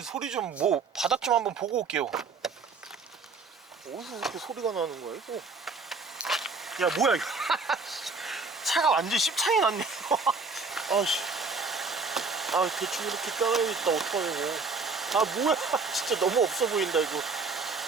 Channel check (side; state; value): left; quieter; 4.3 dB